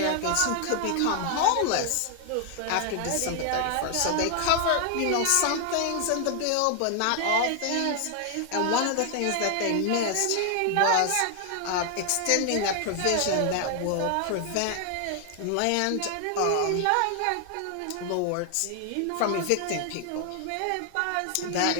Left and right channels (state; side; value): different; both; correlation 0.00